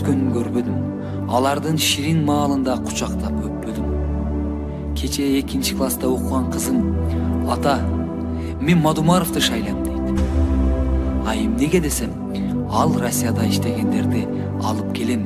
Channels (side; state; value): both; identical; correlation 1.00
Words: көрбөдүм. Алардын ширин маалында кучактап өппөдүм. Кече 2 класста окуган кызым: "Ата, мен Мадумаровду шайлайм" дейт. А эмнеге десем, ал Россияда иштегендерди алып